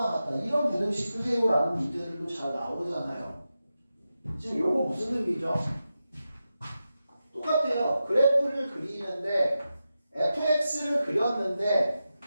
같다. 이런 부등식 푸세요라는 문제들도 잘 나오잖아요. 지금 요거 무슨 의미죠? 똑같아요. 그래프를 그리는데 fx를 그렸는데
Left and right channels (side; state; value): both; inverted; correlation -0.90